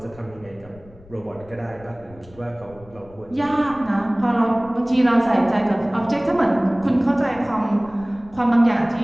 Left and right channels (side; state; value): left; noise; rumble, 23 dB below the sound